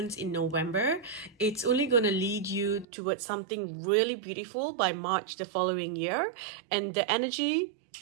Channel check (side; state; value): left; drops out; at 2.9 s